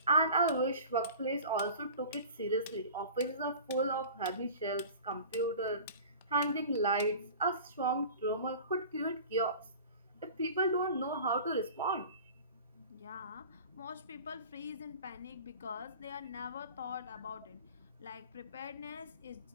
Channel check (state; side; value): inverted; both; correlation -0.40